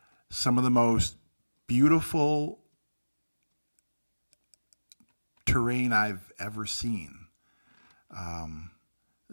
Some of the most beautiful terrain I've ever seen.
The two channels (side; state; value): both; inverted; correlation -1.00